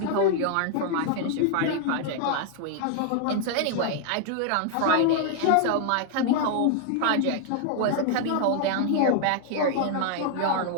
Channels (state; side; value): different; both; correlation 0.00